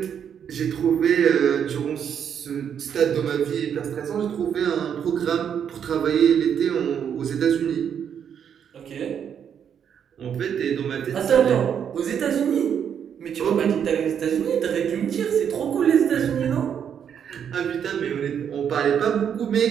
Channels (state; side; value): quieter; left; 8.2 dB